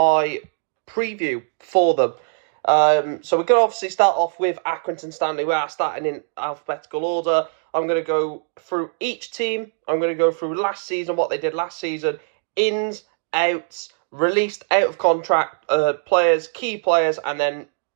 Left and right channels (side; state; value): left; silent; digital silence